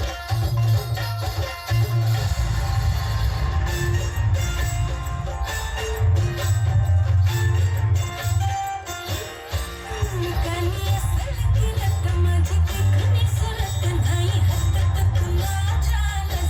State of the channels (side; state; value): both; identical; correlation 1.00